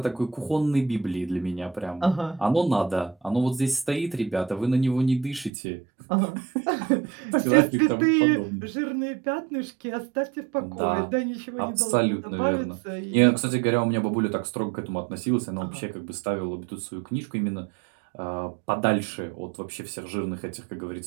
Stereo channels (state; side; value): drops out; left; at 5.5 s